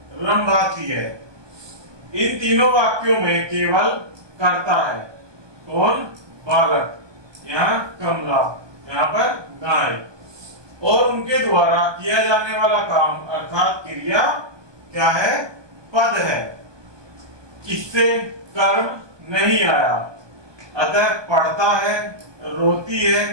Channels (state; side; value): late; left; 1.2 ms